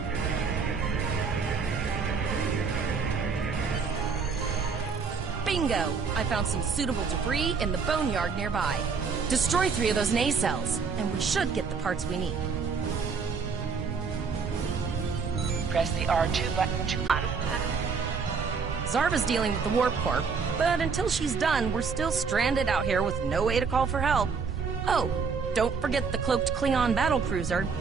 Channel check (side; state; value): left; quieter; 5.4 dB